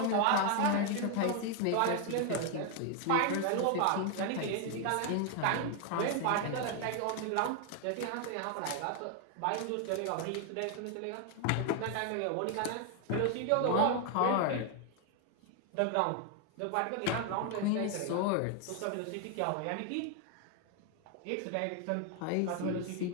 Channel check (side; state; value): both; different; correlation 0.00